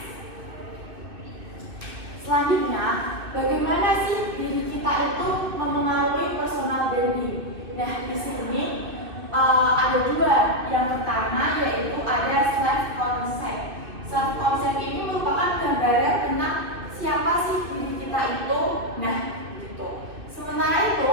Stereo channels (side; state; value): left; late; 2.6 ms